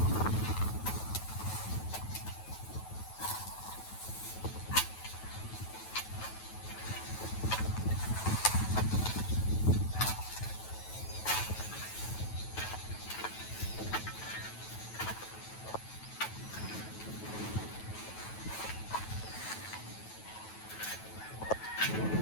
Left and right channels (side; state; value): right; late; 9.2 ms